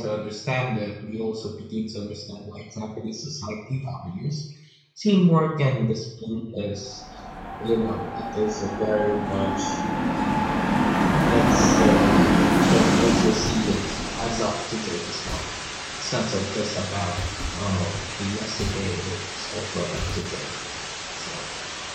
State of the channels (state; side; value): identical; both; correlation 1.00